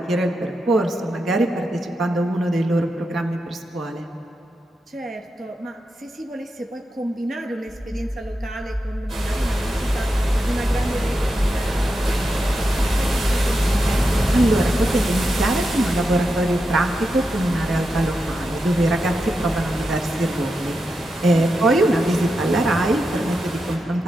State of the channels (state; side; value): normal; both; correlation 0.88